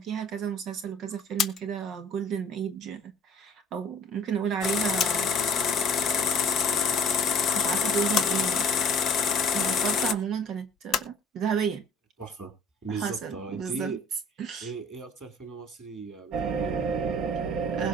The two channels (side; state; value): both; normal; correlation 0.50